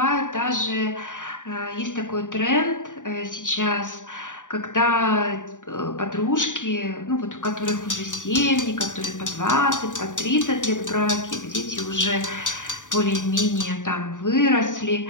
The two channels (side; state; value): right; late; 0.87 ms